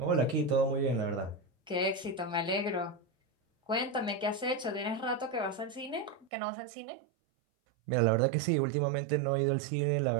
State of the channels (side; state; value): left; drops out; at 6.3 s